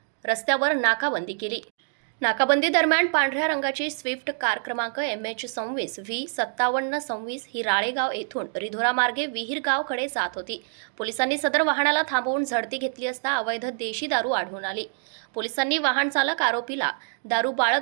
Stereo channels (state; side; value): silent; left; digital silence